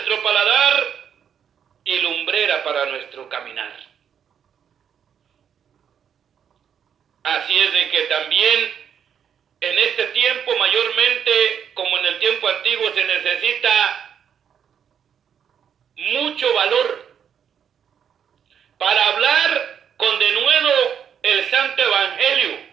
paladar y lumbrera para nuestro caminar. Así es de que también en este tiempo, mayormente como en el tiempo antiguo, se necesita mucho valor para hablar con denuedo el santo evangelio,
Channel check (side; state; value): left; quieter; 8.2 dB